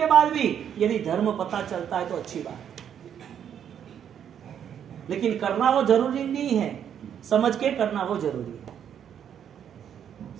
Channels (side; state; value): left; quieter; 8.9 dB